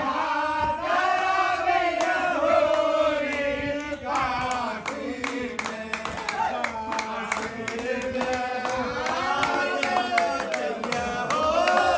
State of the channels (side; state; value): both; identical; correlation 1.00